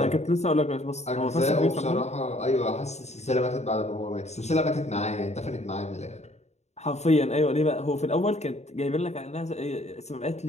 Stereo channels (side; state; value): right; late; 0.32 ms